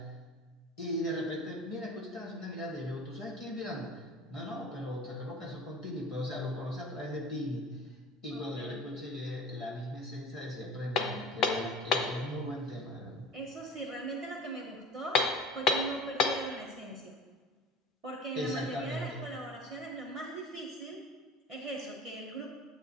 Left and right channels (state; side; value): normal; both; correlation 0.39